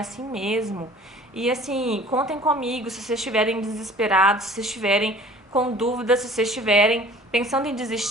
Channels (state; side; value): normal; both; correlation 0.49